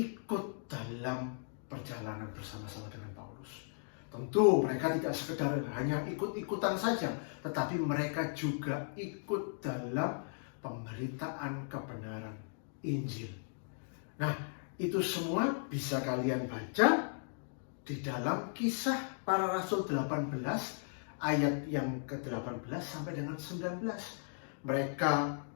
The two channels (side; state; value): right; silent; digital silence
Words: dalam perjalanan bersama-sama dengan Paulus. Tentu mereka tidak sekedar hanya ikut-ikutan saja, tetapi mereka juga ikut dalam pemberitaan kebenaran Injil. Nah, itu semua bisa kalian baca di dalam Kisah Para Rasul 18 ayat yang ke-18 sampai dengan 19. Mereka